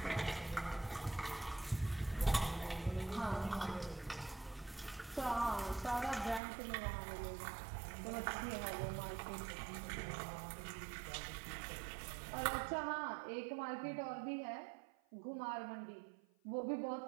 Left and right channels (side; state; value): left; drops out; at 6.4 s